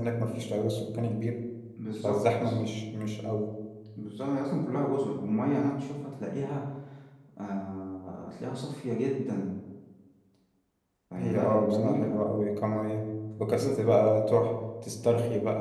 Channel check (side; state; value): both; identical; correlation 1.00